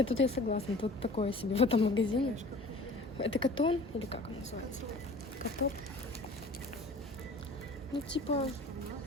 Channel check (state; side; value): normal; both; correlation 0.45